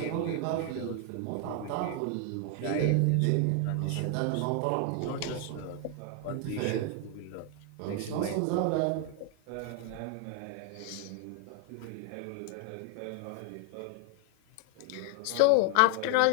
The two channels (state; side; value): different; both; correlation 0.00